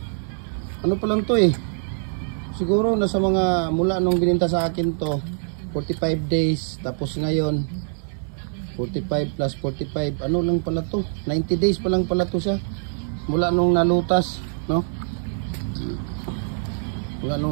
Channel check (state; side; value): silent; left; digital silence